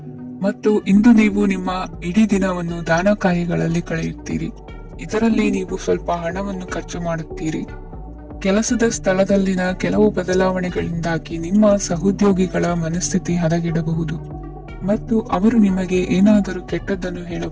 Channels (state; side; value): identical; both; correlation 1.00